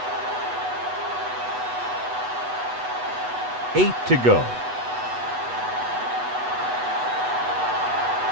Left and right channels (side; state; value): left; late; 8.1 ms